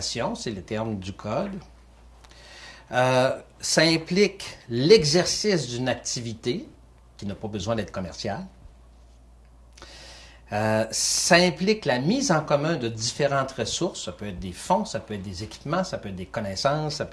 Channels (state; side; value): identical; both; correlation 1.00